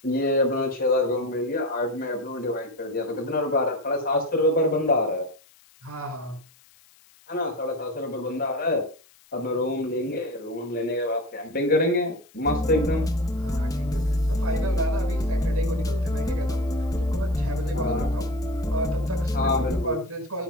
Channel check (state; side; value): noise; left; hiss, 28 dB below the sound